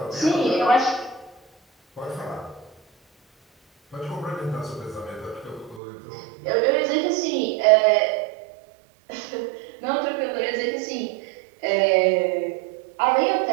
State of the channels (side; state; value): left; drops out; at 5.8 s